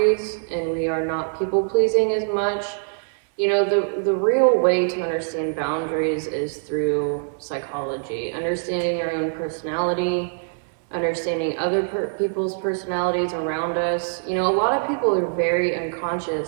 and we are not people pleasing as much. You know, the real way to understand boundaries is through psychology, understanding our own personality, understanding other people's personalities around us. You know, a lot of people are very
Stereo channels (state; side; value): silent; left; digital silence